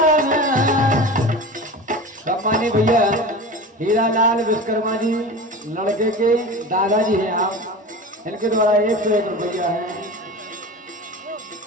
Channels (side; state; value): both; normal; correlation 0.32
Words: सम्मानी भैया हीरालाल विश्वकर्मा जी लड़के के दादाजी हैं आप, इनके द्वारा 101 रुपया है।